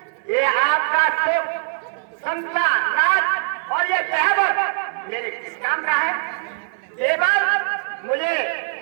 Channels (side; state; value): left; silent; 65 dB below the other